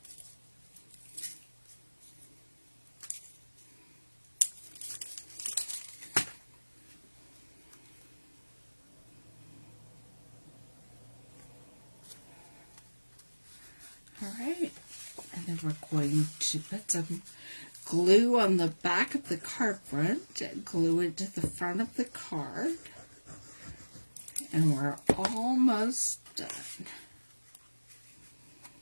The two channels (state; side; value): inverted; both; correlation -1.00